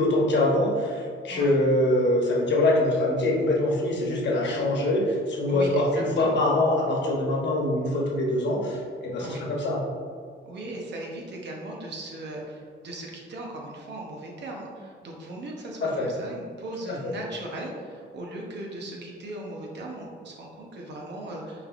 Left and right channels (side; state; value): both; normal; correlation 0.41